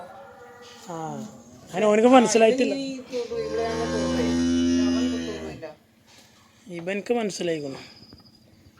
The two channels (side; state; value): both; identical; correlation 1.00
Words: അതിന് ഓനക്ക് മനസ്സിലായിട്ടില്ല. ഇവനക്ക് മനസ്സിലായിക്കണം